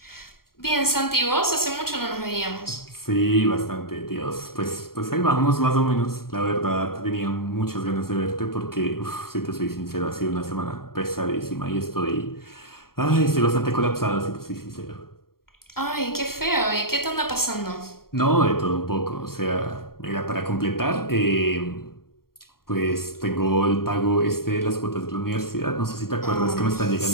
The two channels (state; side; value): late; right; 0.93 ms